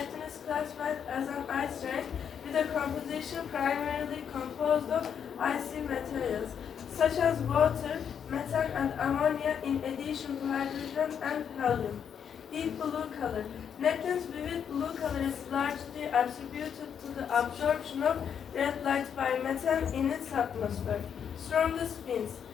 is classified as an ice giant with a composition primarily composed of icy materials such as water, methane and ammonia in addition to hydrogen and helium. Deep blue color. Neptune's vivid blue color is largely attributed to the absorption of red light by methane in its atmosphere. Strongest winds.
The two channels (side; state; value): right; quieter; 7.9 dB